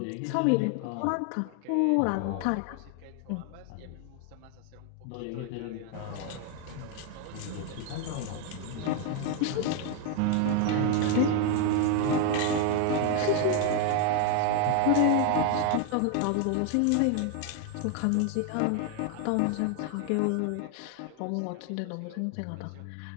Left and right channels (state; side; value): different; both; correlation 0.01